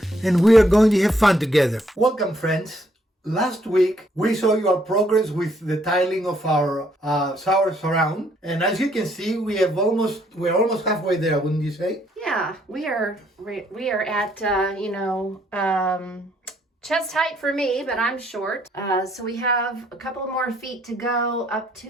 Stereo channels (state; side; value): normal; both; correlation 0.69